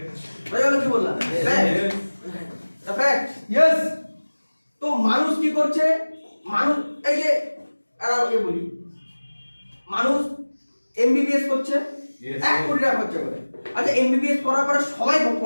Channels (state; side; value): inverted; both; correlation -1.00